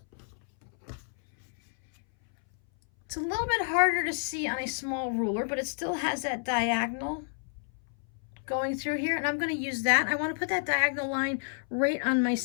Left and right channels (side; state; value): right; silent; 58 dB below the other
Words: It's a little bit harder to see on a small ruler, but it still has that diagonal going through here, and I'm going to use that. I want to put that diagonal line right on my